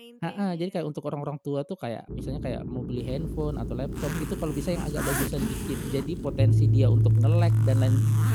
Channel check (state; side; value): identical; both; correlation 1.00